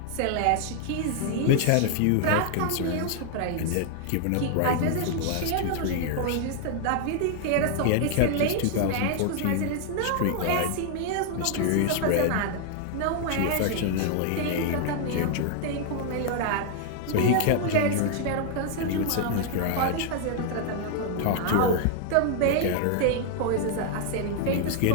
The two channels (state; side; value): different; both; correlation 0.00